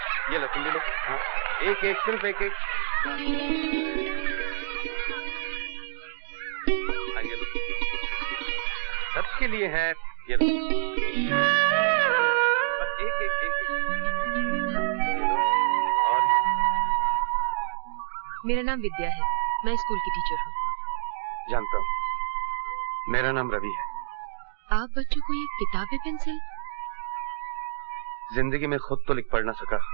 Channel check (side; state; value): left; silent; digital silence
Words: ये लो, तुम भी लो। हाँ, एक एक, सिर्फ एक एक। हाँ, ये लो, सबके लिए है। ये लो, बस एक एक एक, एक। और मेरा नाम विद्या है, मैं स्कूल की टीचर हूँ। जानता हूँ, मेरा नाम रवि है। आप बच्चों को ये किताबें पेंसिल? जिंदगी में खुद तो लिख पढ़ ना सका,